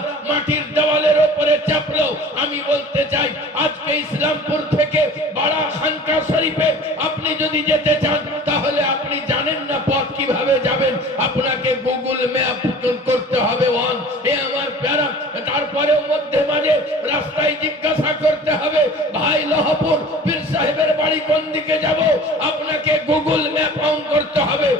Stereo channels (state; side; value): normal; both; correlation 0.43